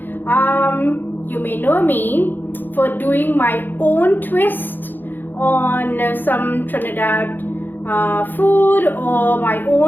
You may know me for doing my own twist on some Trinidad food, or my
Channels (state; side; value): late; right; 0.091 ms